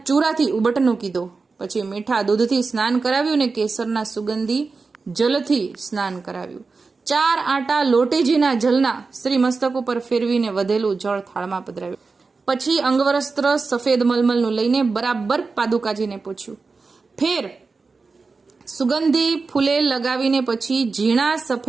ચૂરાથી ઉબટનું કીધું. પછી મીઠા દૂધથી સ્નાન કરાવ્યું અને કેસરના સુગંધી જલથી સ્નાન કરાવ્યું. 4 આંટા લોટેજીના જલના શ્રી મસ્તક ઉપર ફેરવીને વધેલું જળ થાળમાં પધરાવ્યું. પછી અંગવસ્ત્ર સફેદ મલમલનું લઈને બરાબર પાદુકાજીને પૂછ્યું. ફેર સુગંધી ફૂલે લગાવીને પછી ઝીણા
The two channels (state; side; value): quieter; left; 4.3 dB